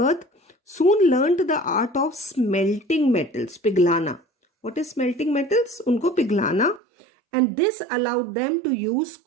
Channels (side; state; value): left; drops out; at 6.8 s